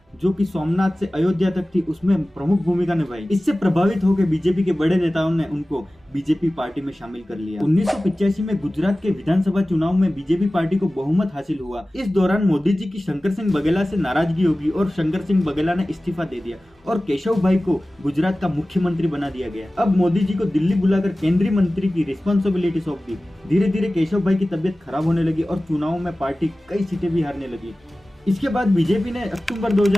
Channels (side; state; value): both; normal; correlation 0.97